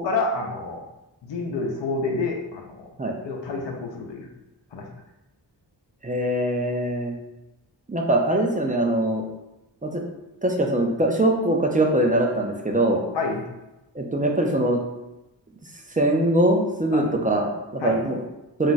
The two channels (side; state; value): both; normal; correlation 0.24